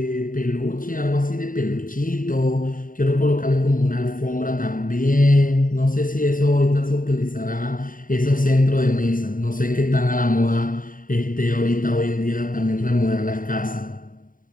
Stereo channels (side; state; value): right; late; 0.39 ms